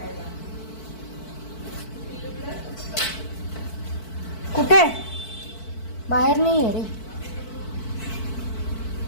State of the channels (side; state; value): right; late; 4.5 ms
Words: कुठे? बाहेर नाही आहे रे.